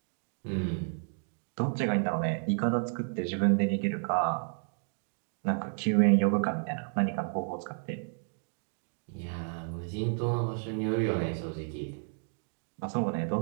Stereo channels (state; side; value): silent; left; 57 dB below the other